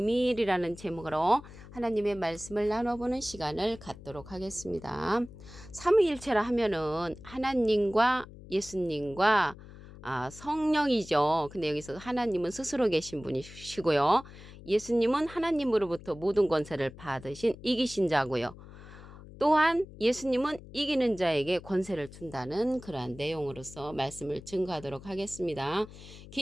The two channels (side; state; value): left; noise; hum, 17 dB below the sound